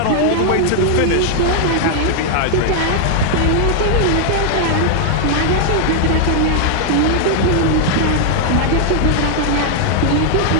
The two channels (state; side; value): different; both; correlation 0.00